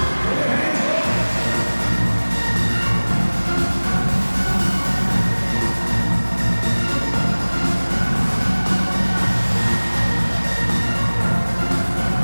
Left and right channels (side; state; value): both; inverted; correlation -1.00